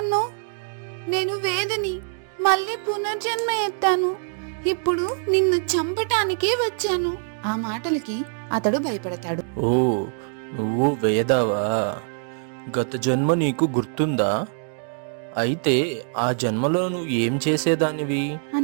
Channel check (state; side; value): silent; left; 63 dB below the other